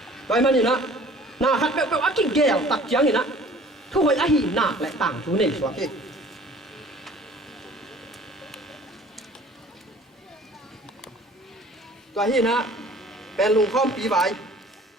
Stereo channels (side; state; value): both; normal; correlation 0.49